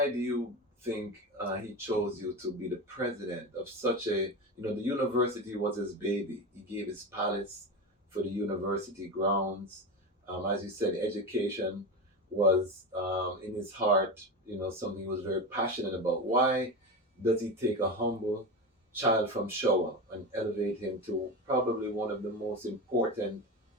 do you think he chose you to be the president of such a, the university was his baby. He gave his palace for the university grounds. As you said, education was in his heart, something he was very passionate about. Why does he take a humble child from Showa and elevate him to probably one of the most important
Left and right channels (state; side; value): normal; both; correlation 0.22